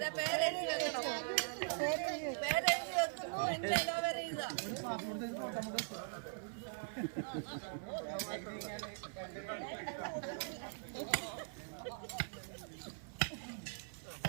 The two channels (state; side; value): silent; left; 50 dB below the other